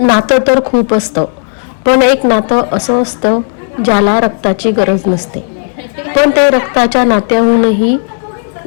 तर खूप असतं, पण एक नातं असं असतं ज्याला रक्ताची गरज नसते, पण ते रक्ताच्या नात्याहूनही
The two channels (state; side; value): silent; right; 61 dB below the other